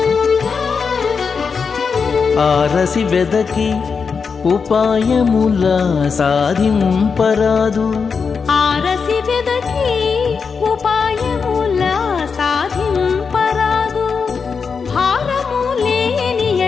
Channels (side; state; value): right; quieter; 5.5 dB